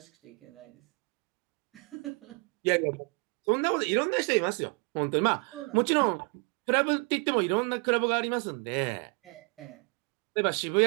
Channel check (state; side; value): quieter; left; 33.9 dB